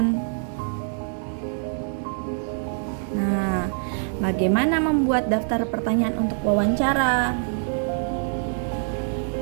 Nah, bagaimana membuat daftar pertanyaan untuk wawancara?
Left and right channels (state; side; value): silent; left; digital silence